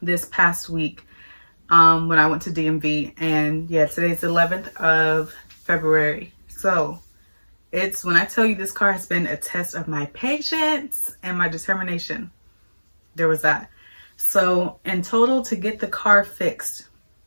this past week when I went to DMV. And yeah, today's the 11th of February. So it's, when I tell you this car has been a test of my patience and my determination, there was that. So in total, to get the car fixed,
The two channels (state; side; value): inverted; both; correlation -1.00